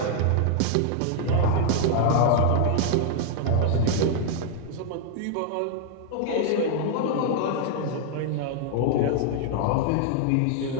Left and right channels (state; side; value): different; both; correlation 0.00